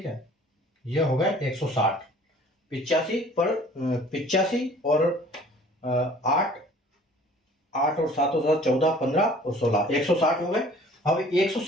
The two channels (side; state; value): both; normal; correlation 0.51